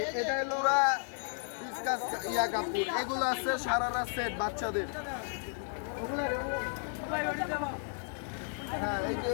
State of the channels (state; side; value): silent; right; 55 dB below the other